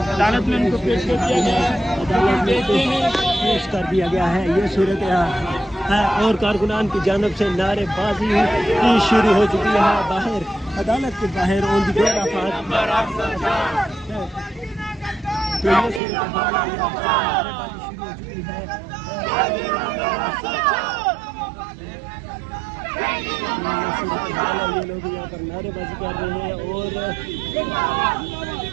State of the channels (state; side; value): drops out; left; at 16.0 s